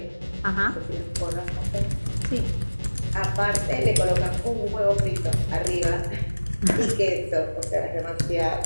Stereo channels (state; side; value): inverted; both; correlation -1.00